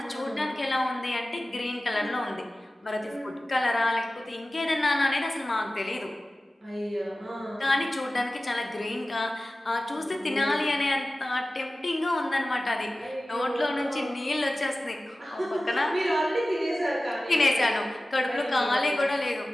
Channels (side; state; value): both; normal; correlation 0.96